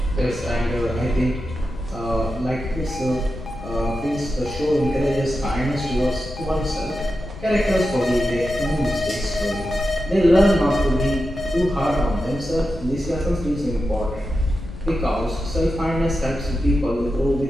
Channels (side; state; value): left; noise; rumble, 13 dB below the sound